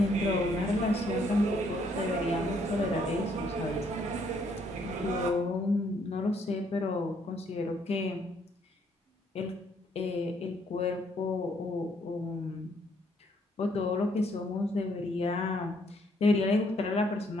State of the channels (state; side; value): normal; both; correlation 0.68